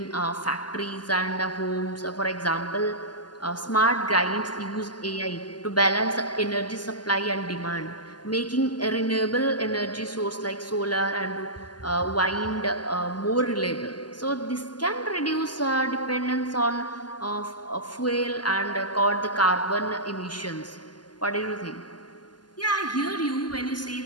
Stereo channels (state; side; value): late; right; 0.70 ms